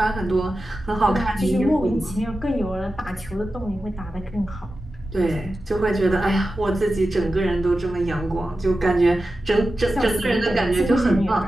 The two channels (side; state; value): both; normal; correlation 0.93